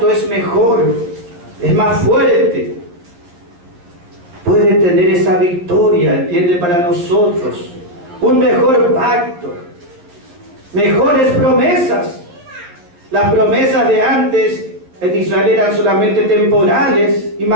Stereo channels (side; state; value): left; late; 11 ms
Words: es mejor, es más fuerte. Puede tener esa victoria, entiende, para nosotros. Un mejor pacto. Mejores promesas. Las promesas de antes en Israel eran solamente temporales y